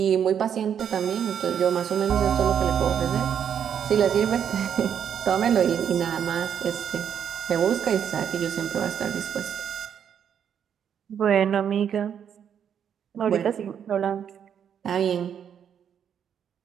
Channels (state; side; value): quieter; left; 8.4 dB